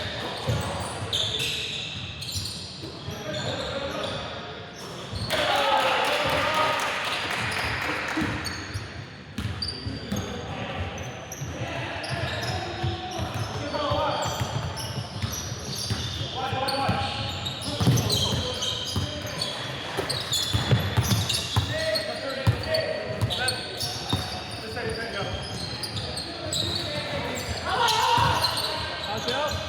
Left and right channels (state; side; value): identical; both; correlation 1.00